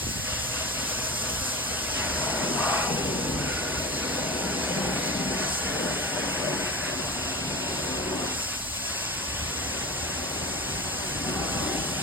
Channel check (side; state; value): both; normal; correlation 0.28